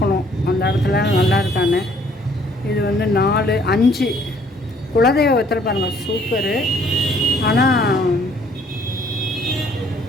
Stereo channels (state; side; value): normal; both; correlation 0.61